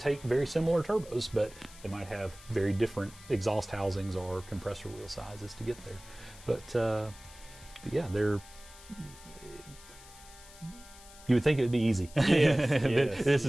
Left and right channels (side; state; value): left; noise; hiss, 20 dB below the sound